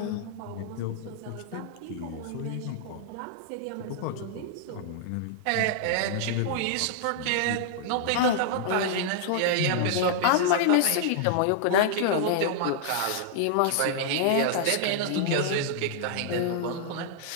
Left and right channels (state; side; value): different; both; correlation -0.01